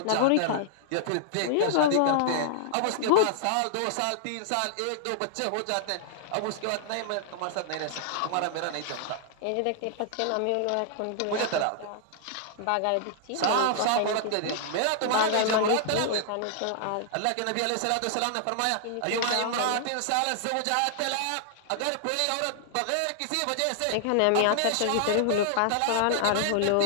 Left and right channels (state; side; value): different; both; correlation -0.01